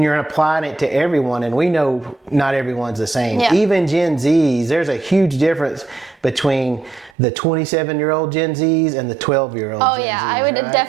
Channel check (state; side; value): drops out; left; at 7.1 s